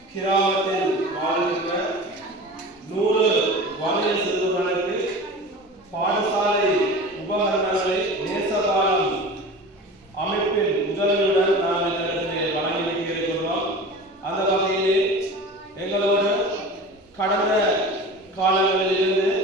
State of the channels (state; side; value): normal; both; correlation 0.35